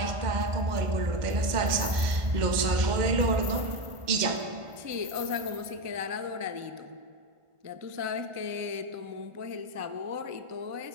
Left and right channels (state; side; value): late; left; 1.5 ms